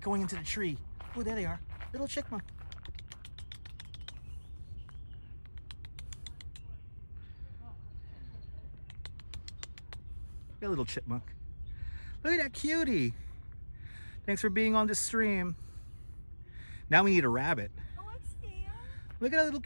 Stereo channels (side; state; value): both; inverted; correlation -1.00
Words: into the tree. Oh, there they are. Little chipmunk. A little chipmunk. Look at that cutie. Thanks for being on the stream. Now we need a rabbit. Oh, I see him. Look at that little